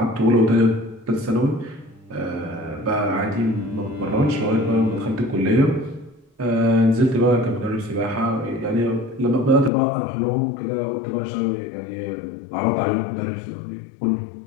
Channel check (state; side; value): drops out; right; at 9.7 s